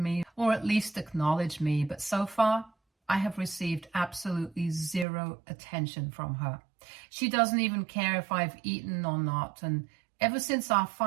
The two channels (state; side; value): drops out; left; at 5.1 s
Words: or at least acknowledge me, but so far I have received absolutely zero attention from her. She doesn't even care if I've eaten or not, and ever since our